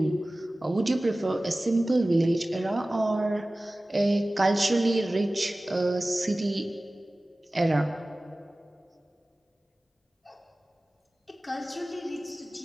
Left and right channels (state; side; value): normal; both; correlation 0.97